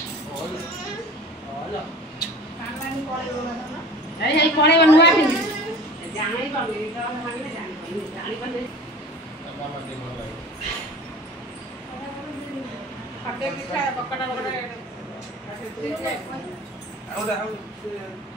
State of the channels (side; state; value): both; normal; correlation 0.41